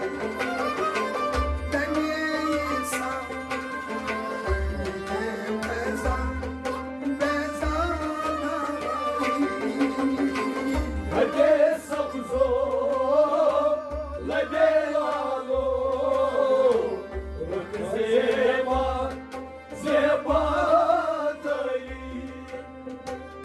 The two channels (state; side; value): identical; both; correlation 1.00